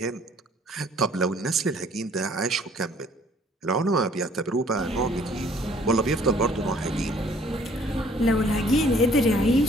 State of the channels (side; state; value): both; normal; correlation 0.58